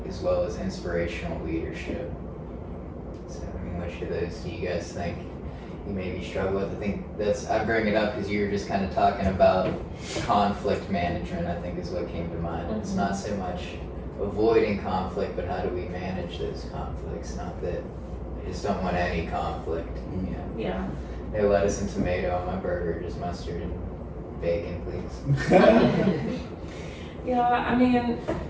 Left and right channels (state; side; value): identical; both; correlation 1.00